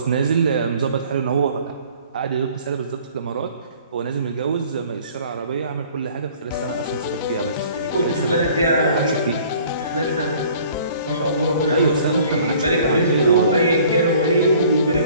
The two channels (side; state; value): both; inverted; correlation -0.53